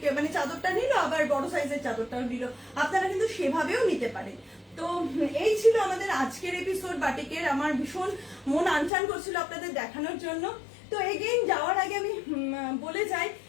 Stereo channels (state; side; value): drops out; right; at 8.9 s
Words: মানে চাদরটা নিল, আবার বড় সাইজের চাদরটাও নিল, আপনারা কিন্তু সেভাবেও নিতে পারেন। তো এই ছিল আমাদের আজকের এপিসোড বাটিকের। আমার ভীষণ মন আনচান করছিল আপনাদের দেখানোর জন্য। তো এগেইন যাওয়ার আগে আমি বলে যাই